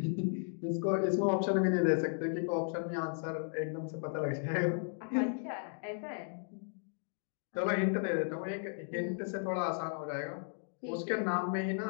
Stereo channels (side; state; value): right; silent; digital silence